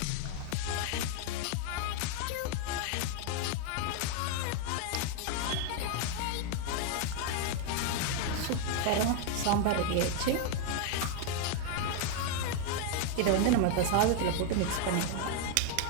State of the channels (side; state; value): both; different; correlation 0.00